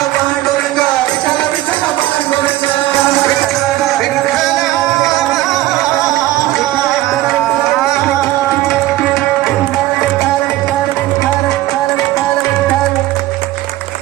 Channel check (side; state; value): left; quieter; 15.9 dB